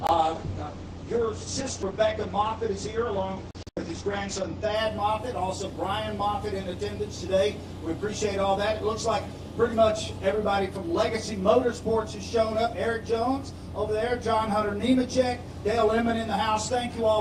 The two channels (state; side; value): identical; both; correlation 1.00